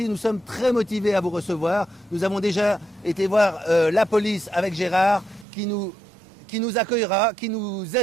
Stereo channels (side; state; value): left; drops out; at 5.5 s